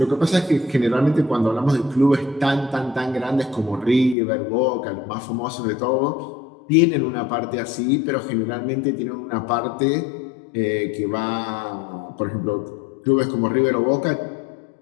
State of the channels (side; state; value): right; drops out; at 4.2 s